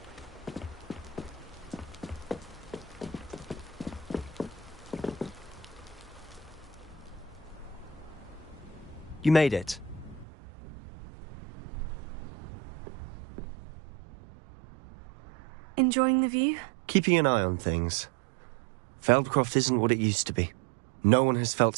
You made it. Enjoying the view? Keeping an eye on things. Feldcroft isn't what it used to be. No one has felt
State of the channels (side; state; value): left; drops out; at 10.2 s